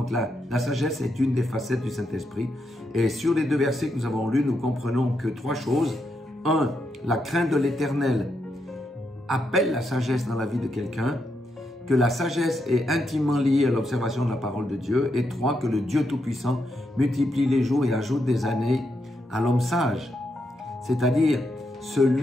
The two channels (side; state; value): both; normal; correlation 0.82